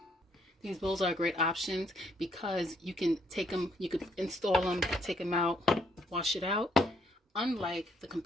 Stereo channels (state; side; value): normal; both; correlation 0.70